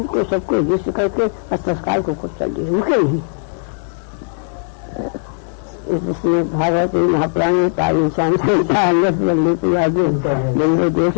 सबको युद्ध करके और तत्काल को कुछ चल दिए, रुके नहीं। इसलिए भागवत महापुराण पावन शाम से नंदो देश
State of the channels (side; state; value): right; silent; digital silence